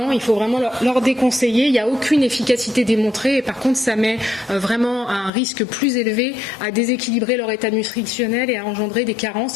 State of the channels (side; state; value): right; drops out; at 5.3 s